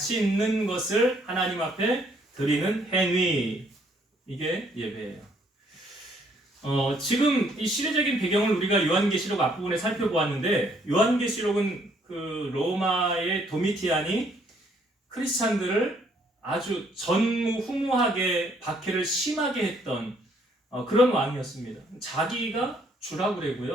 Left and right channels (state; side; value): normal; both; correlation 0.66